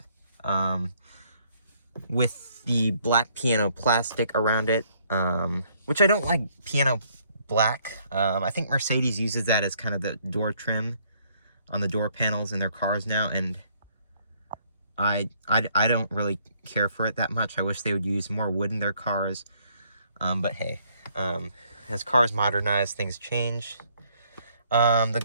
with the black piano plastic around it, which I don't like piano black. I think Mercedes uses that as kind of the door trim on the door panels in their cars now, and I don't really care for it that much. I wish they would use more wood in their cars, but hey. As cars modernize, things change. Let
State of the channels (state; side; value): inverted; both; correlation -0.67